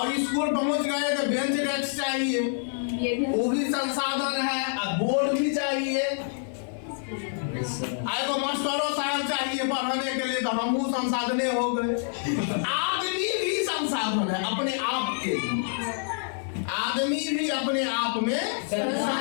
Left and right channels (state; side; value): silent; right; 58 dB below the other